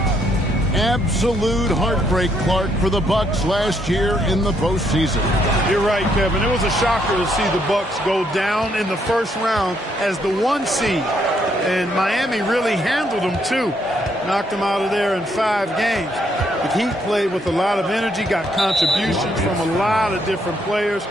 Absolute heartbreak, Clark, for the Bucks last year in the postseason. You're right, Kevin. It was a shocker to see the Bucks go down in the first round as the 1 seed. And Miami really handled them, too. Knocked them out of there in 5 games. The Heat played with a lot of energy, got contributions from a lot of different players,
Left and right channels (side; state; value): both; normal; correlation 0.73